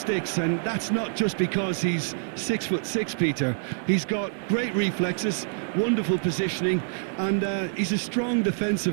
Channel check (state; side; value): silent; left; digital silence